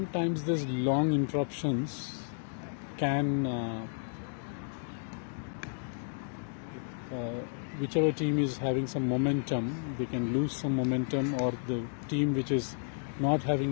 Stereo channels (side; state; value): right; silent; digital silence